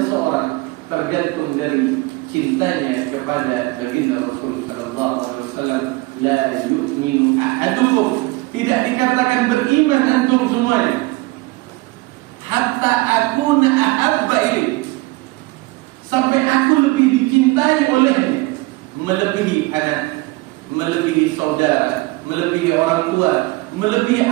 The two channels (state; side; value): quieter; left; 22.3 dB